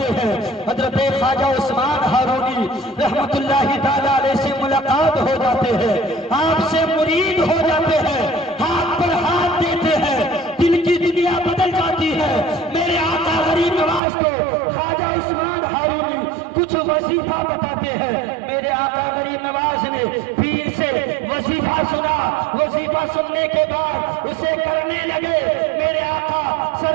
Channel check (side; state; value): left; drops out; at 14.0 s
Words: ہیں۔ حضرت خواجہ عثمان ہارونی رحمت اللہ تعالی علیہ سے ملاقات ہو جاتے ہیں، آپ سے مرید ہو جاتے ہیں، ہاتھ پر ہاتھ دیتے ہیں، دل کی دنیا بدل جاتی ہے۔ میرے آقا غریب نواز کو خواجہ عثمان ہارونی کچھ وظیفہ بتاتے ہیں۔ میرے آقا غریب نواز نے پیر سے وظیفہ سنا، وظیفہ سننے کے بعد اسے کرنے لگے۔ میرے آقا